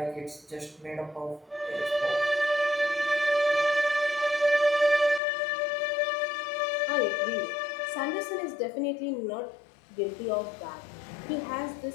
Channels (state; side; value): drops out; right; at 5.2 s